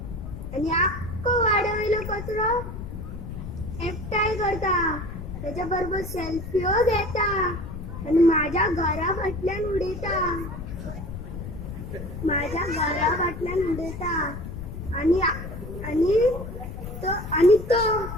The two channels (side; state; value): left; noise; rumble, 8 dB below the sound